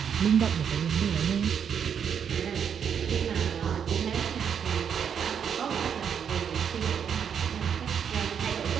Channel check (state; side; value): quieter; left; 7.7 dB